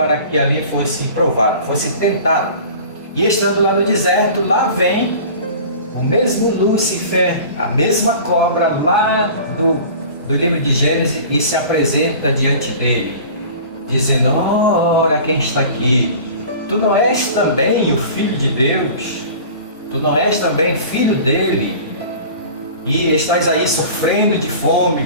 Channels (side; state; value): both; inverted; correlation -0.41